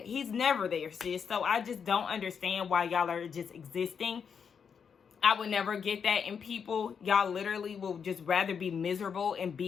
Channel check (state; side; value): quieter; right; 6.7 dB